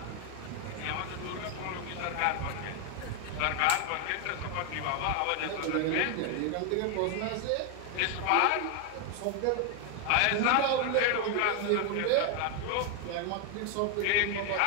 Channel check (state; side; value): different; both; correlation 0.01